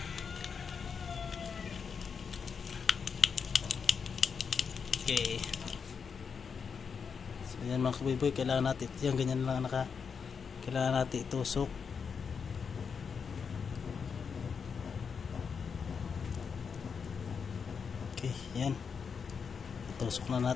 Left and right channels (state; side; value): quieter; right; 6.1 dB